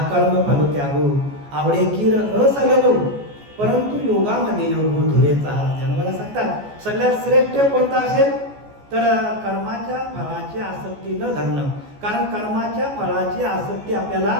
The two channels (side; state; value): left; late; 14 ms